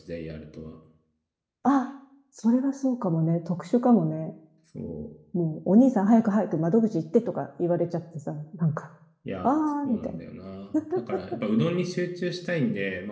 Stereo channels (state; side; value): identical; both; correlation 1.00